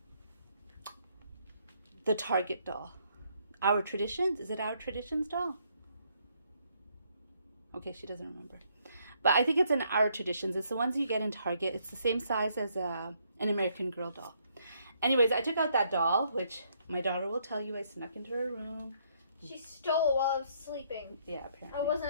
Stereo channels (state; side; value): inverted; both; correlation -0.70